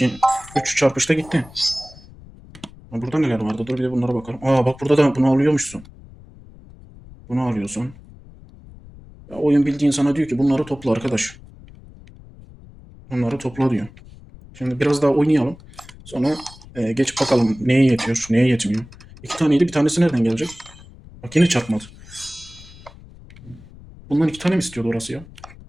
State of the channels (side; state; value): left; noise; rumble, 20 dB below the sound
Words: 3 çarpışta gitti. Burada neler vardı? Dur bir de bunlara bakalım. Aa bak burada da bunu alıyormuşsun. Bunu alıyorsun. Ya oyun bildiğin sana diyor ki bunları topla arkadaş. Bunları topla diyor. Şimdi biraz daha oynayalım. Sonra geç bakalım neye yetiyor, neye yetmiyor. 2 taneydi, bir tanesi nereden gelecek? Bak yine çarpmadı. Bundan 2 tane mi istiyordu orası ya?